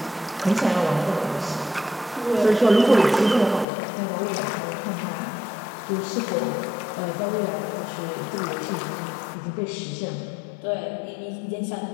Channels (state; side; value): drops out; right; at 3.7 s